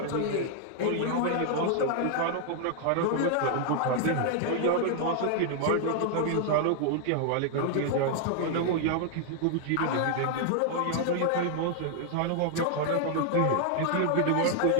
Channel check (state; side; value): different; both; correlation 0.00